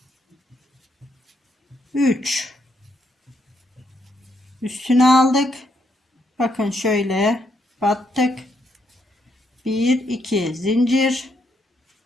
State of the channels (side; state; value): both; normal; correlation 0.76